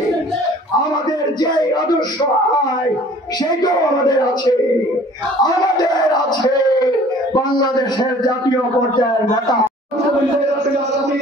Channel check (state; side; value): normal; both; correlation 0.51